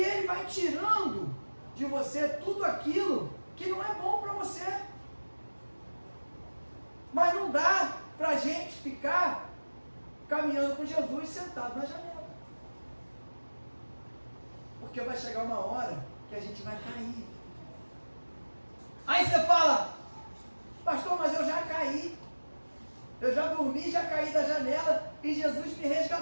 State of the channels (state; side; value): inverted; both; correlation -1.00